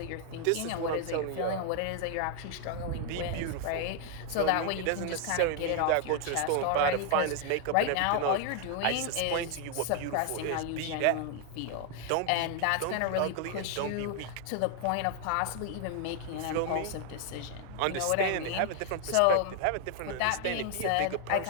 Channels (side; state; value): both; different; correlation 0.00